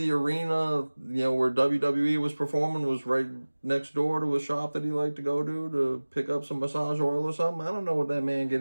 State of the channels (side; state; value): both; inverted; correlation -1.00